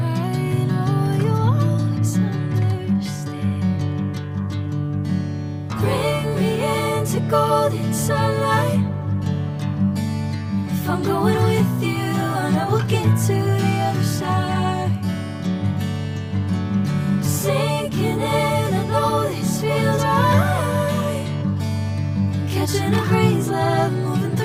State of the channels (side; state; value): both; identical; correlation 1.00